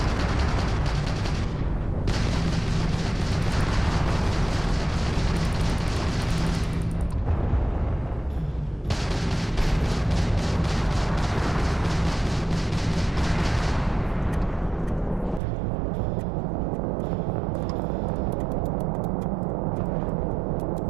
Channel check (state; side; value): drops out; left; at 15.4 s